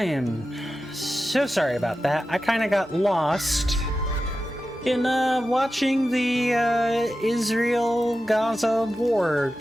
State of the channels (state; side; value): normal; both; correlation 0.92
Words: am so sorry about that. I kind of got lost in watching the Israel-Gaza war